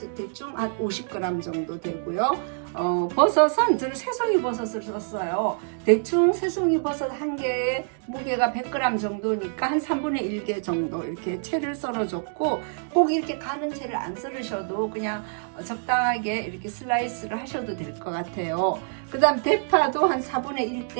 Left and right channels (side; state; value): left; silent; digital silence